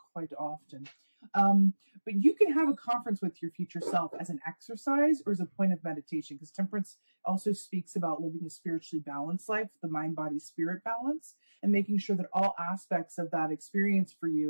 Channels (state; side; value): inverted; both; correlation -1.00